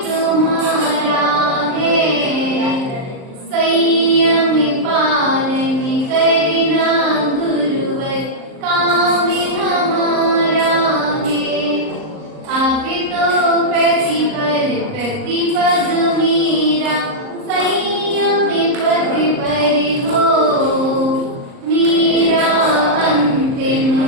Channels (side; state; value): left; late; 38 ms